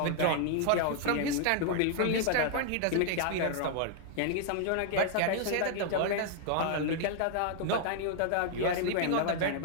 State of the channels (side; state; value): both; different; correlation -0.01